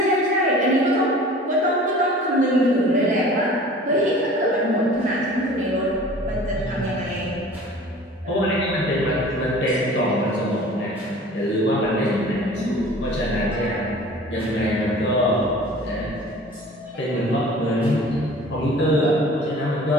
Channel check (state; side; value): normal; both; correlation 0.45